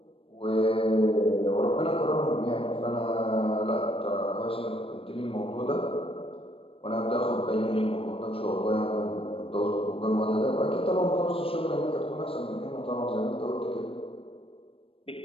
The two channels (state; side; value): late; right; 0.27 ms